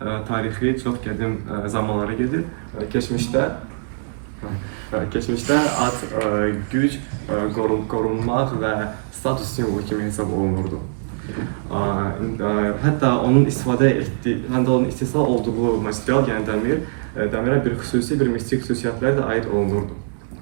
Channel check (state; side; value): silent; left; digital silence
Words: tarixi çox qədim zamanlara gedir. Keçmişdə ad güc, qorunmaq və status simvolu kimi hesab olunurdu. Hətta onun istisna olduğu material, yəni dəmirə bir xüsusi, bir mistik xüsusiyyətlər də aid olunurdu.